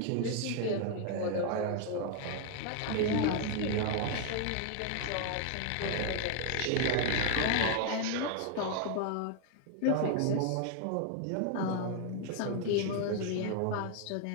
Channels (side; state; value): both; different; correlation 0.00